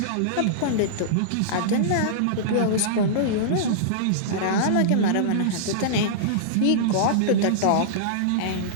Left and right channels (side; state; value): both; different; correlation -0.02